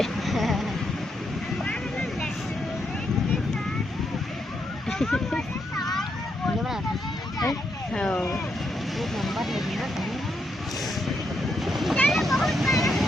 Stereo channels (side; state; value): both; normal; correlation 0.80